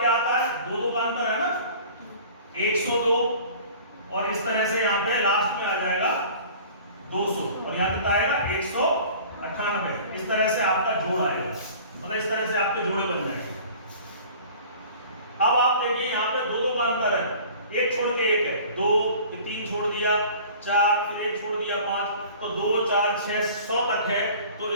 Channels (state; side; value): inverted; both; correlation -0.45